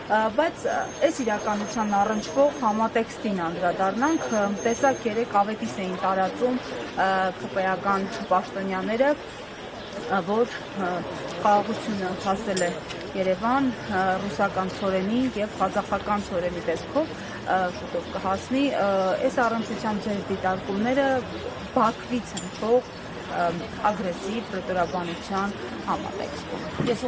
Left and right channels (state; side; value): identical; both; correlation 1.00